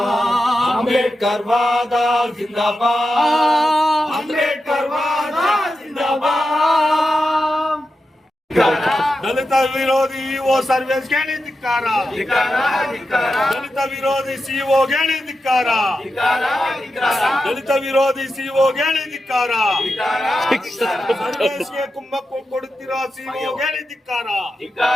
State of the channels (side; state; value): both; normal; correlation 0.90